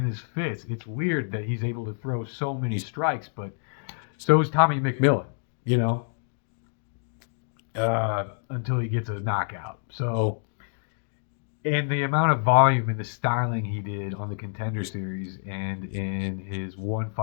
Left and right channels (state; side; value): silent; right; digital silence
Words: his fist. It's weird that he's able to throw so many strikes, but so is Tommy McMillan, you know, until he gets a knockout. So, and the amount of volume and the styling he did on the Contender Series and in his one